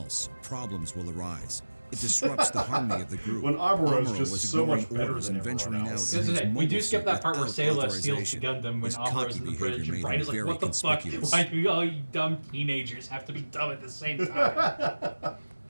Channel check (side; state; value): both; inverted; correlation -1.00